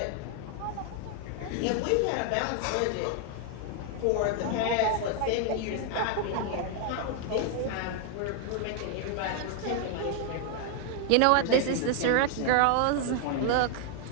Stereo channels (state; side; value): different; both; correlation 0.00